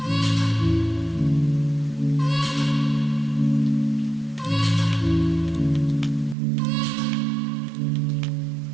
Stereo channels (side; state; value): left; drops out; at 6.4 s